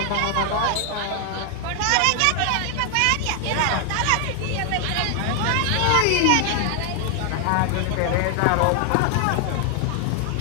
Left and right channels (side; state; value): both; different; correlation 0.00